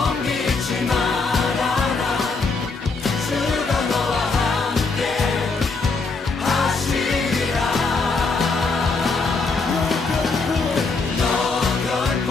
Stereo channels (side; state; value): right; quieter; 4.1 dB